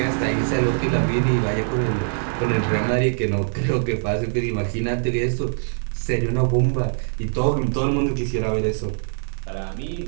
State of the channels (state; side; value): silent; left; 55 dB below the other